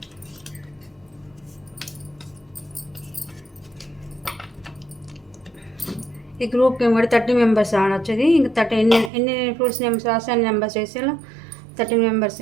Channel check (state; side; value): drops out; left; at 9.1 s